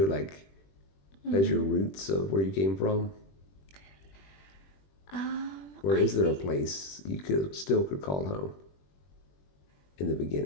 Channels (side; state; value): right; late; 21 ms